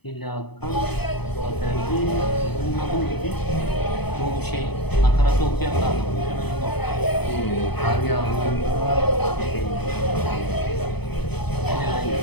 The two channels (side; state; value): right; late; 0.98 ms